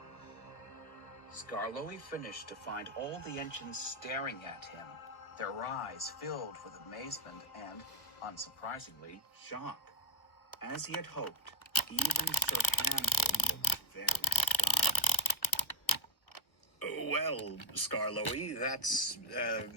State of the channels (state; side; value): late; right; 1.5 ms